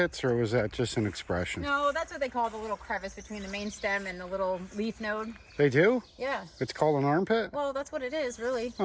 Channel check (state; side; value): identical; both; correlation 1.00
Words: or was that just an expression? No, that's what they call the little crevice between the main stem and the little leaf node. They do? Yeah. It's called an armpit? Well, that's what it is, really.